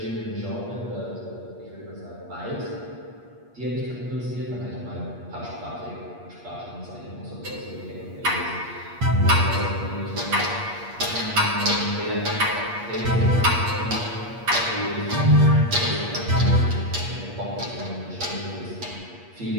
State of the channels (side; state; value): left; late; 8.4 ms